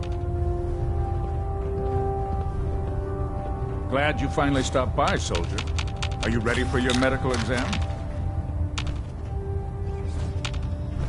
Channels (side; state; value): both; identical; correlation 1.00